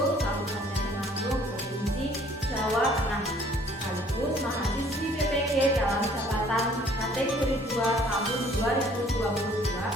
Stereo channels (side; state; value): both; normal; correlation 0.58